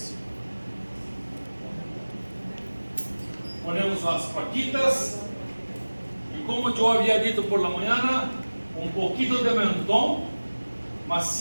Ponemos as paquitas e, como eu havia dito por la manhã, um pouquinho de mentón, mas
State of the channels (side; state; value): both; inverted; correlation -1.00